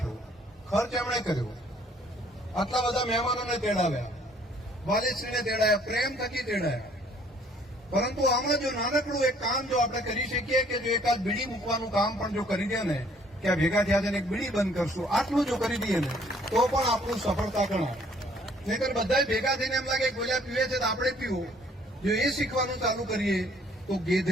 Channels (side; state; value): both; normal; correlation 0.60